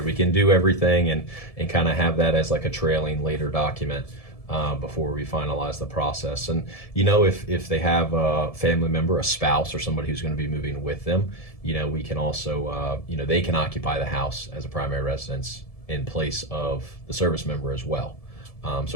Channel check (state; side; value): late; right; 1.7 ms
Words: We can do everything and kind of have that as like a trailing later document. Before we finalize the process. And if they have a family member, a spouse, or somebody who's going to be moving with them, we can also they can occupy the house as a primary residence in place of the service member as well.